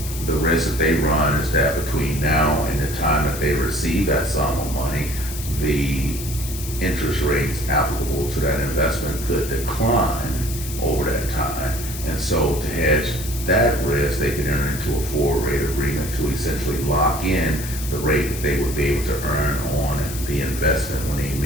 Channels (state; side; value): noise; left; hiss, 10 dB below the sound